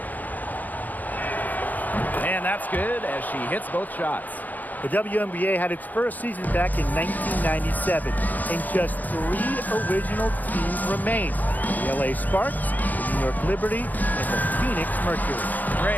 And that's good as she hits both shots. The WNBA had its first season back in 1997, and just 3 original teams remain: the LA Sparks, the New York Liberty, and the Phoenix Mercury.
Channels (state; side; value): late; right; 0.082 ms